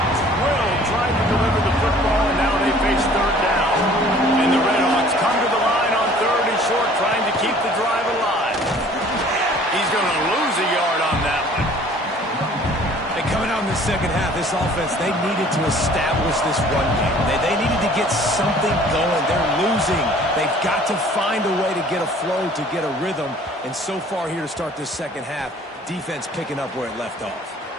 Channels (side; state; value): both; normal; correlation 0.52